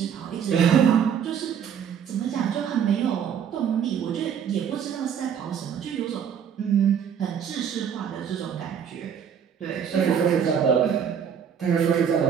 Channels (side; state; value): left; quieter; 8.0 dB